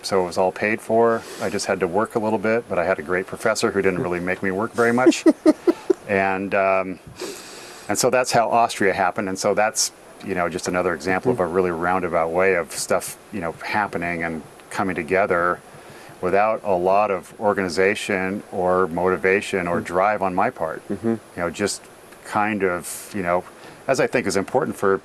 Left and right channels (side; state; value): both; identical; correlation 1.00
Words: so it was all paid for. I just had to work a little bit, but I had a great professor who didn't really make me work very much. And so that's how Austria happened. And so that's, just another example of a really roundabout way of stuff, happening and coming together without a lot of organization or motivation or drive on my part. Mm-hmm. Just kind of, as I think is important for,